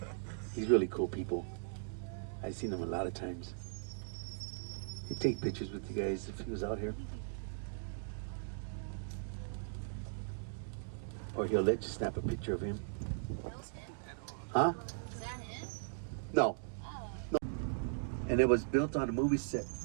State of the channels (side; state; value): left; silent; digital silence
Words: He's really cool people. I've seen him a lot of times. He'd take pictures with you guys if he was out here. Or he'll let you snap a picture of him. That was him? Huh? Is that him? No. Oh. And it was built on a movie set.